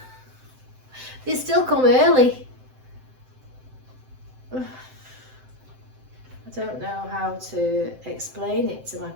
They still come early. I don't know how to explain it to my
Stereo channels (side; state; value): left; late; 7.8 ms